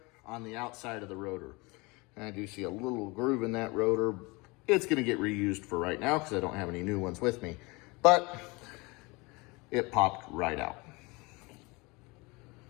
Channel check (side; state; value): right; quieter; 25.7 dB